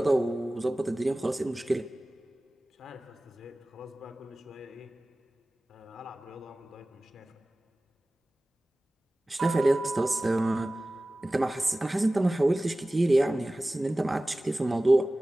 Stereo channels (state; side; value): normal; both; correlation 0.97